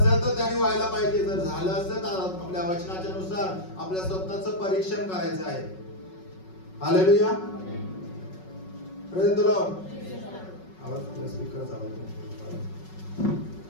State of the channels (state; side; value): late; right; 5.4 ms